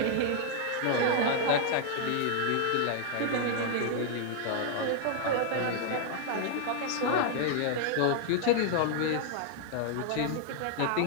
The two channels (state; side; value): different; both; correlation 0.00